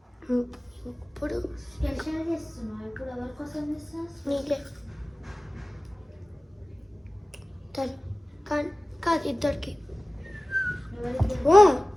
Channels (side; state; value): both; normal; correlation 0.97